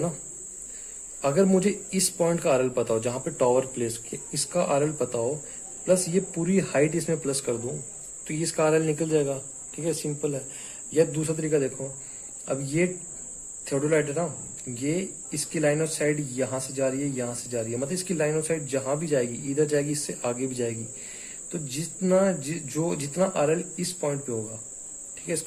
अगर मुझे इस पॉइंट का आरएल पता हो जहां पे टावर प्लेस किया, इसका आरएल पता हो, प्लस ये पूरी हाइट इसमें प्लस कर दूं, तो ये इसका आरएल निकल जाएगा, ठीक है, सिंपल है। या दूसरा तरीका देखो, अब ये थियोडोलाइट है ना, ये इसकी लाइन ऑफ साइड यहां से जा रही है, यहां से जा रही है, मतलब इसकी लाइन ऑफ साइड जहां भी जाएगी, इधर जाएगी, इससे आगे भी जाएगी, तो जितना आरएल इस पॉइंट पे होगा, ठीक है,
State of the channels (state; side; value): identical; both; correlation 1.00